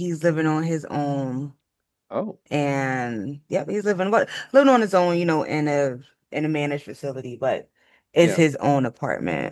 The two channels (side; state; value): both; identical; correlation 1.00